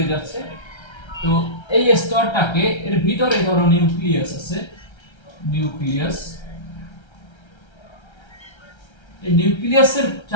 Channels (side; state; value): right; late; 1.3 ms